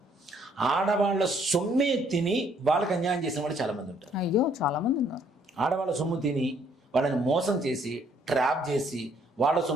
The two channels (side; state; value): both; normal; correlation 0.65